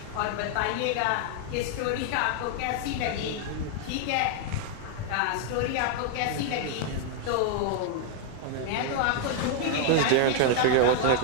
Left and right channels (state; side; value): different; both; correlation 0.00